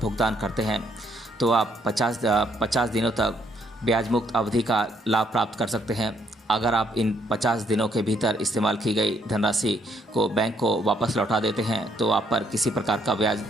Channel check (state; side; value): normal; both; correlation 0.70